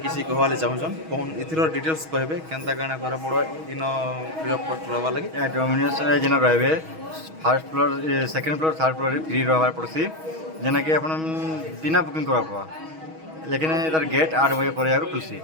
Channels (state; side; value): late; left; 6.3 ms